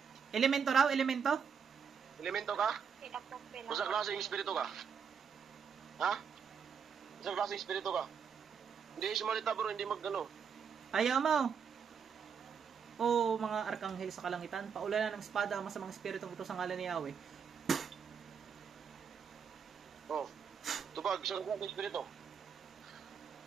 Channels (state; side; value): quieter; left; 6.8 dB